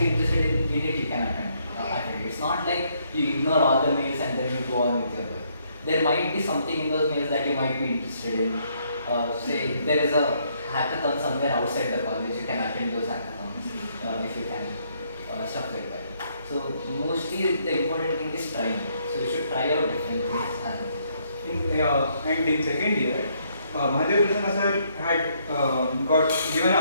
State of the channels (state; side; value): inverted; both; correlation -0.71